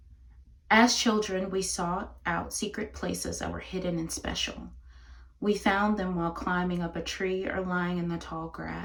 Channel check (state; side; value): identical; both; correlation 1.00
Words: as children, we sought out secret places that were hidden and special. We found them while climbing up a tree or lying in the tall